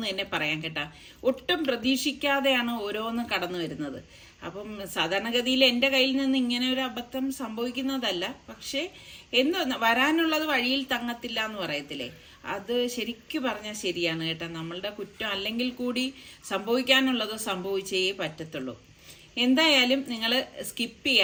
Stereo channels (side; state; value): both; identical; correlation 1.00